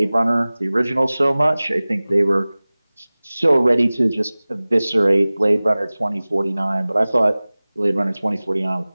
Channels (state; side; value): inverted; both; correlation -0.99